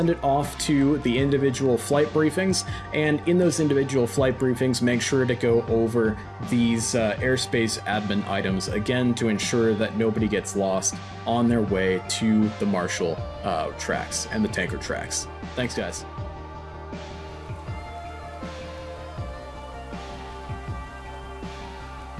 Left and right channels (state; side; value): identical; both; correlation 1.00